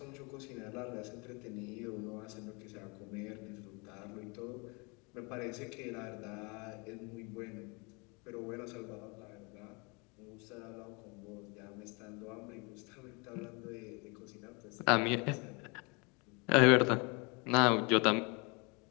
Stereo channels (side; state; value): right; quieter; 30.2 dB